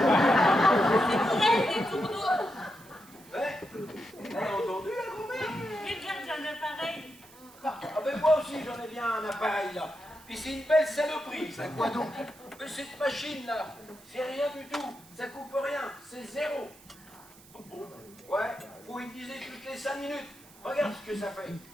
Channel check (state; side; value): noise; right; hiss, 23 dB below the sound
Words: C'est des tourneaux. Ouais? Elle a entendu la grand-mère? J'ai déjà un appareil. Ah, ben moi aussi j'en ai bien un appareil là. Puis c'est une belle saloperie. Ça quoi donc? Mais cette machine là, c'est rien du tout. Ça coupe rien, c'est zéro. Ouais, faut utiliser toutes les 5 minutes. Regarde ce que ça fait.